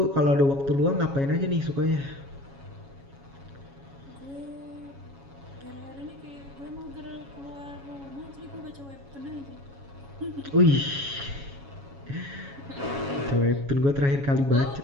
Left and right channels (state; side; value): late; left; 7.2 ms